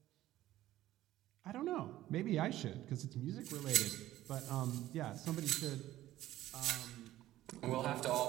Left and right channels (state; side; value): quieter; left; 14.6 dB